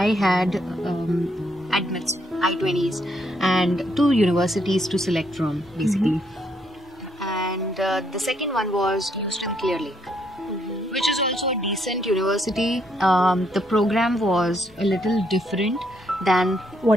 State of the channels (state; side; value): normal; both; correlation 0.73